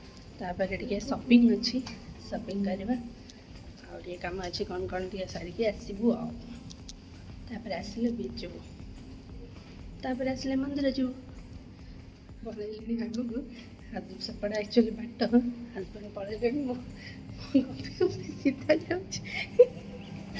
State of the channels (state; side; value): identical; both; correlation 1.00